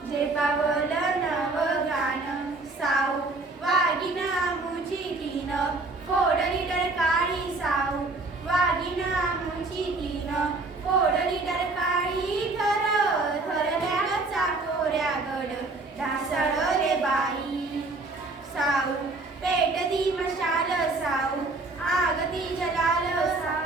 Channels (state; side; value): quieter; left; 3.4 dB